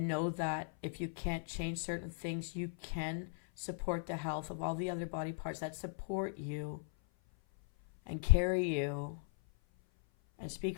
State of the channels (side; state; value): right; silent; 52 dB below the other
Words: know that if you can't change certain things, you can support the health of all the other body parts that support you and carry you and speak